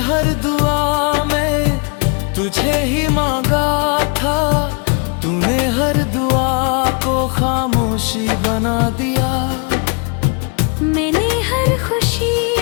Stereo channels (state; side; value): quieter; right; 35.4 dB